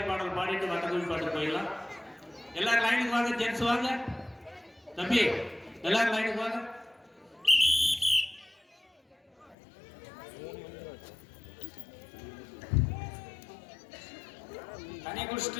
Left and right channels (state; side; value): drops out; right; at 9.6 s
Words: பாடல் பாடிட்டு வட்டக்குழி பாட்டு போயிடலாம் எல்லாரும் லைனுக்கு வாங்க ஜென்ஸ் வாங்க தம்பி எல்லாரும் லைனுக்கு வாங்க தண்ணி